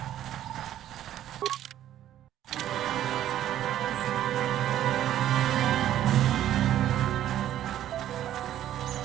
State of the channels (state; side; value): quieter; left; 12.0 dB